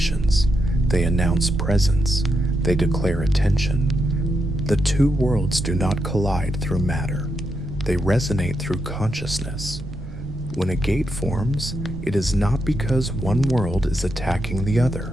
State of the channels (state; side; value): noise; right; rumble, 14 dB below the sound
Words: They announce presence. They declare attention. The two worlds do not collide through matter. They resonate through consciousness. When a gate forms, it is not because one world is attacking the